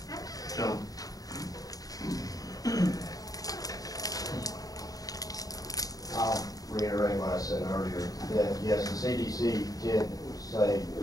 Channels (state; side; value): late; right; 0.18 ms